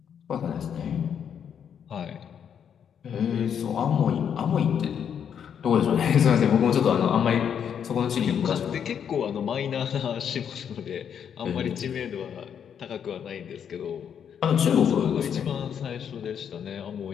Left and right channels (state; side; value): quieter; right; 8.2 dB